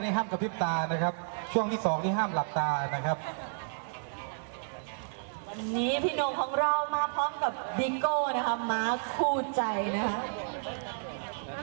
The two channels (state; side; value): silent; left; digital silence